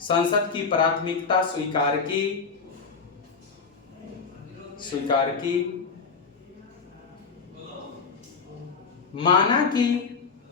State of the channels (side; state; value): right; quieter; 5.1 dB